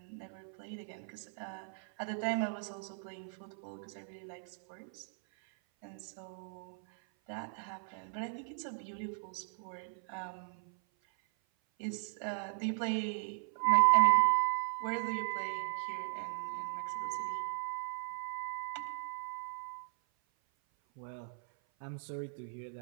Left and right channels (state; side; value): silent; left; 53 dB below the other